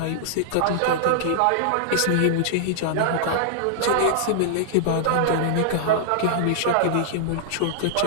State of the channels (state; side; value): different; both; correlation -0.01